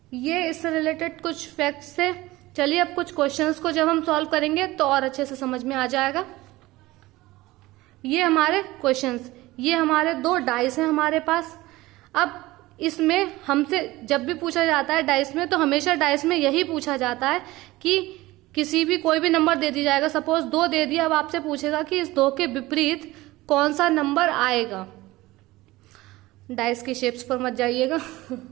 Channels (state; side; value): quieter; left; 18.9 dB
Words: ये इससे रिलेटेड कुछ फैक्ट्स थे। चलिए अब कुछ क्वेश्चंस को जब हम सॉल्व करेंगे तो और अच्छे से समझ में आ जाएगा। ये हमारे क्वेश्चंस, ये हमारे 2 डाइस हैं हमारे पास। अब इसमें हमसे जब भी पूछा जाता है डाइस में, तो हमेशा डाइस में यही पूछा जाता है कि किसी भी कोई भी नंबर दे दी जाएगा। सपोज 2 दे दिया, अब आपसे पूछेगा कि इस 2 के विपरीत कौन सा नंबर आएगा। डाइस की शेप्स पर मत जाइएगा।